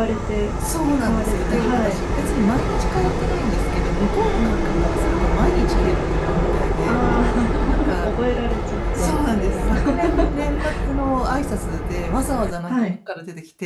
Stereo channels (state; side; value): identical; both; correlation 1.00